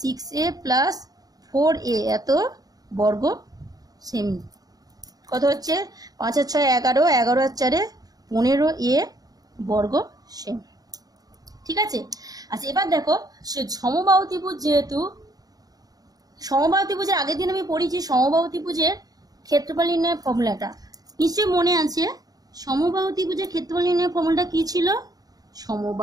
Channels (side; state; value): left; late; 0.18 ms